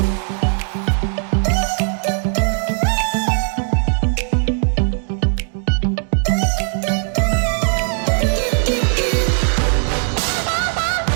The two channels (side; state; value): left; silent; 59 dB below the other